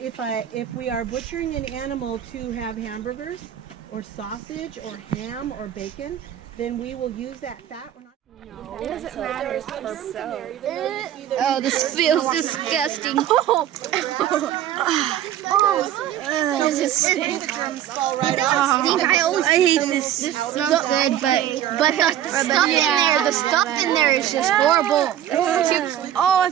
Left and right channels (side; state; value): left; quieter; 11.2 dB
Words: we are butchering an animal to have hamburgers or sausage or ham or bacon, then we will use that fat. We're not. It doesn't matter for soap. Oh, this feels disgusting. Does it stink? I hate this. This smells good, but the stuff in there is just horrible. Oh, I